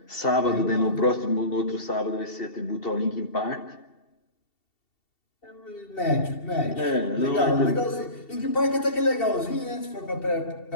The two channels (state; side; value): late; right; 2.7 ms